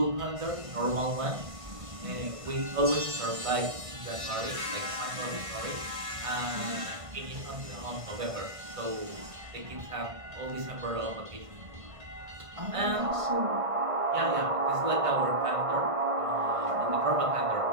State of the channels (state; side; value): late; left; 1.5 ms